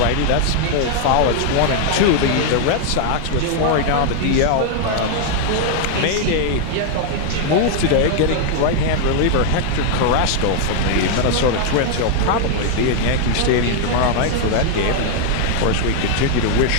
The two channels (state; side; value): different; both; correlation 0.00